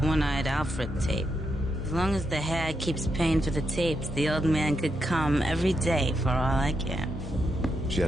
One-Eyed Alfred tape. As long as the hag keeps paying for the tapes, the old man could come every day for all I care. She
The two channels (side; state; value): both; normal; correlation 0.83